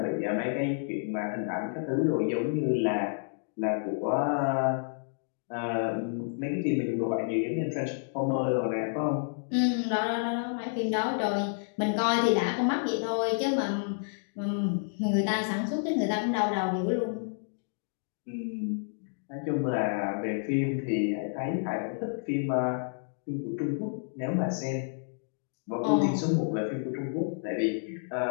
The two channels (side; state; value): right; silent; digital silence